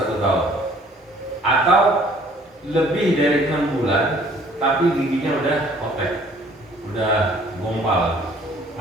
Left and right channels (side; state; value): both; normal; correlation 0.56